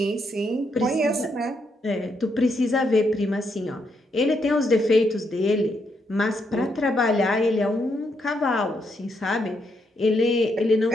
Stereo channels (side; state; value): both; normal; correlation 0.78